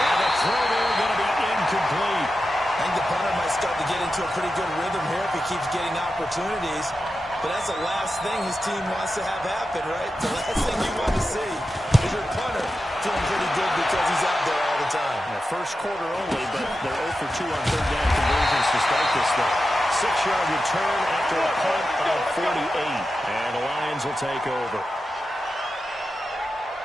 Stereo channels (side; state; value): both; normal; correlation 0.91